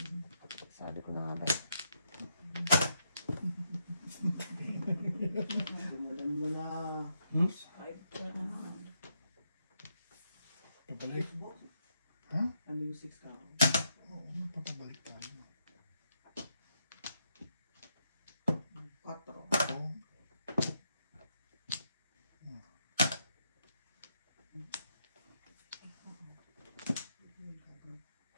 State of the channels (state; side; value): inverted; both; correlation -0.79